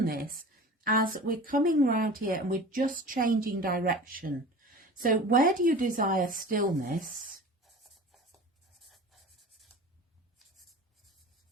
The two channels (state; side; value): normal; both; correlation 0.37